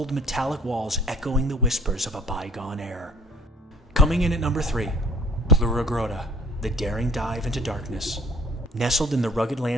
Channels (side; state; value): both; normal; correlation 0.53